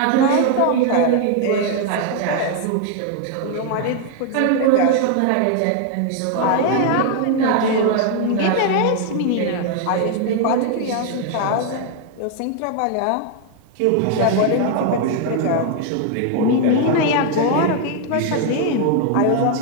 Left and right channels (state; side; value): different; both; correlation 0.00